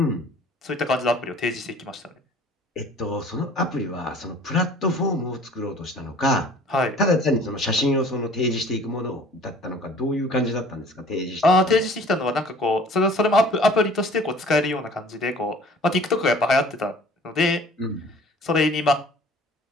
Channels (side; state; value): both; normal; correlation 0.50